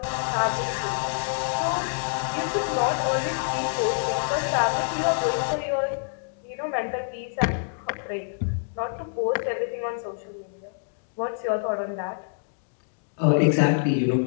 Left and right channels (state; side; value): silent; right; digital silence